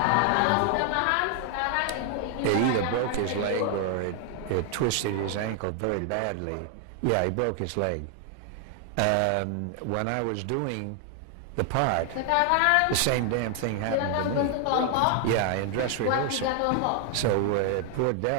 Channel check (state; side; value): different; both; correlation 0.00